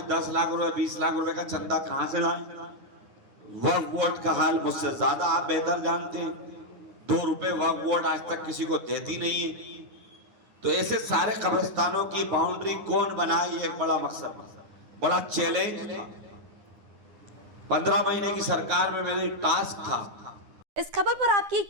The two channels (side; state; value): left; late; 9.8 ms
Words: लाख रुपए 20 लाख रुपए का चंदा कहां से लाएं? वक्फ बोर्ड का हाल मुझसे ज्यादा आप बेहतर जानते हैं। 2 रुपए वक्फ बोर्ड आज तक किसी को देती नहीं है। तो ऐसे सारे कब्रिस्तानों की बाउंड्री कौन बनाए, ये एक बड़ा मकसद, बड़ा चैलेंज। 15 महीने की सरकार में मेरी टास्क था। इस खबर पर आपकी